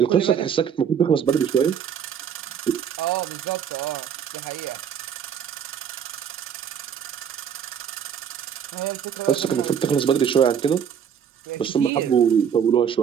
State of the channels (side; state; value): left; quieter; 8.1 dB